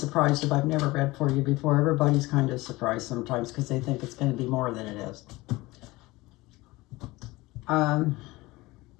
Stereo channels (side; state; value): right; quieter; 20.8 dB